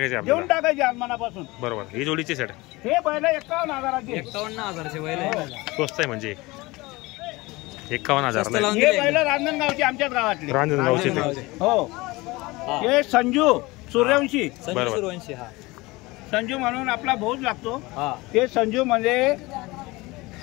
देऊन टाकायची आज मनापासून. बरोबर. ही जोडीची सेट हे बैल 51,000चे. 51,000चे बैल स्वस्त आहे म्हणजे 51,000. हे बैल रांजणगावची आमच्याच गावातली. रांजणगावची. हो. हे संजू सूर्यवंशी. सूर्यवंशी. संजू म्हणून आपला भाऊच लागतो. ते संजू म्हणजे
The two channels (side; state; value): right; quieter; 22.1 dB